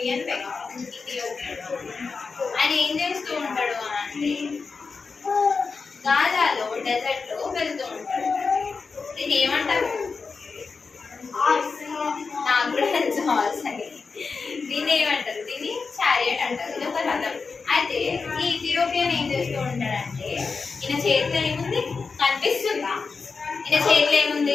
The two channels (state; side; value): quieter; right; 4.7 dB